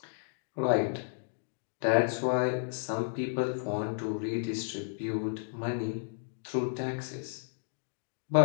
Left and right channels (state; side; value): silent; right; digital silence